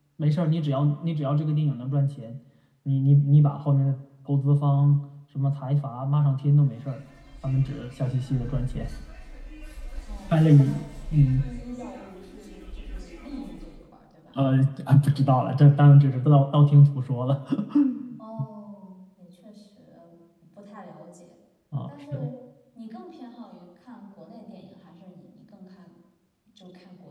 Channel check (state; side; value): identical; both; correlation 1.00